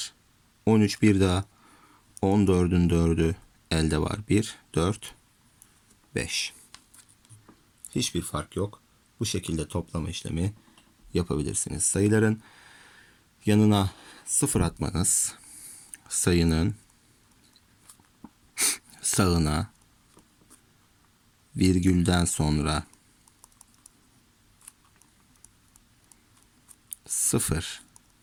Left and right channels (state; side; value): identical; both; correlation 1.00